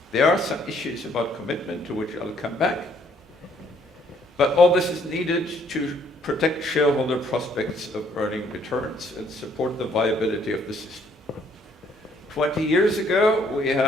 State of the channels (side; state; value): both; normal; correlation 0.66